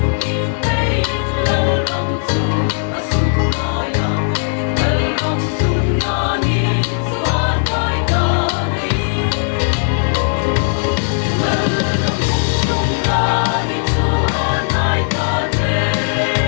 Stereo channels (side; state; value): right; silent; 65 dB below the other